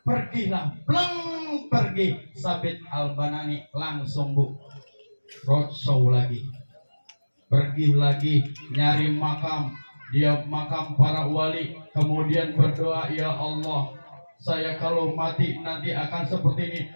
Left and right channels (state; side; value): inverted; both; correlation -1.00